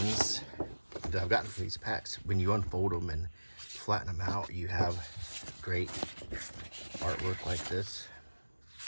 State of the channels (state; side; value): inverted; both; correlation -1.00